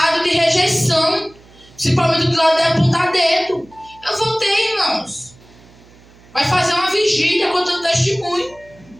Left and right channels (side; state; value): right; noise; hum, 26 dB below the sound